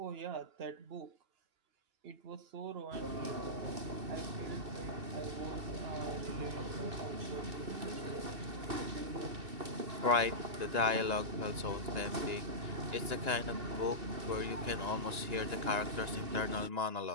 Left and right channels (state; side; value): late; left; 2.9 ms